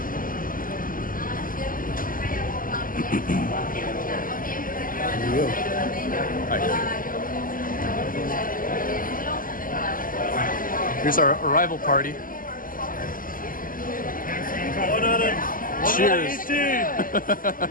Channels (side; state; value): right; late; 0.41 ms